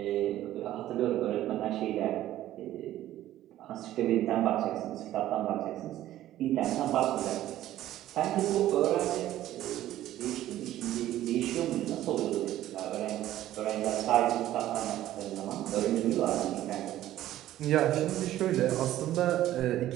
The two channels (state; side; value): quieter; left; 13.6 dB